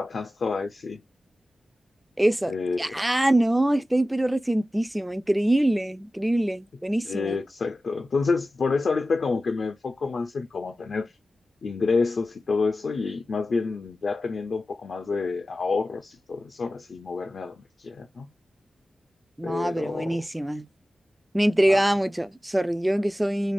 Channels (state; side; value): normal; both; correlation 0.95